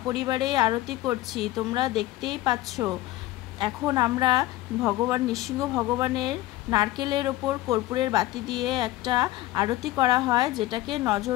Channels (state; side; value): quieter; right; 16.6 dB